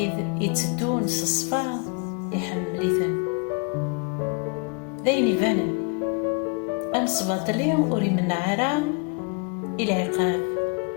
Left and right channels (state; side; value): quieter; right; 32.5 dB